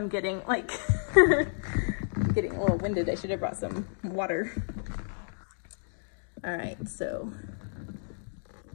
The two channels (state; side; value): silent; right; digital silence